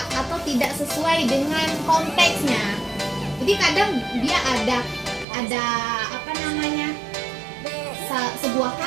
atau tidak sesuai dengan konteksnya. Jadi Jadi kadang dia ada apa namanya, sebuah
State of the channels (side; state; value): left; drops out; at 5.2 s